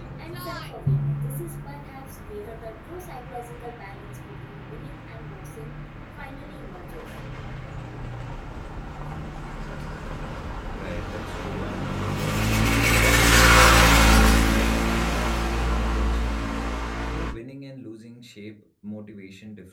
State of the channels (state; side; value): identical; both; correlation 1.00